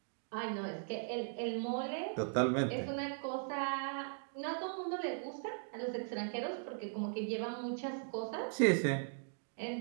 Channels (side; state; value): left; silent; digital silence